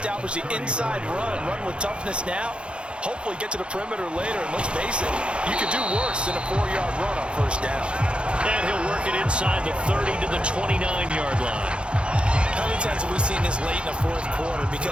the inside run with toughness now. Hopefully get to the perimeter later, and let's face it, you could do worse than a 4-yard run on first down. And he'll work it inside the 30 to the 29-yard line. How many times have we seen this late in the fourth quarter?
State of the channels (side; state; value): left; late; 0.056 ms